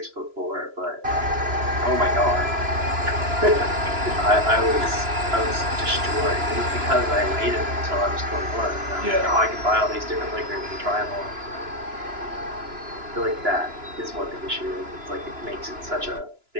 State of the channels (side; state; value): left; late; 2.9 ms